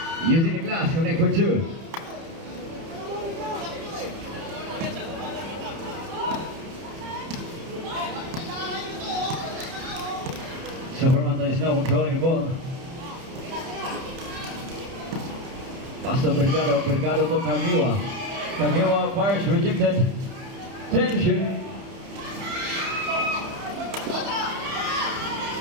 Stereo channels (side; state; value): left; late; 30 ms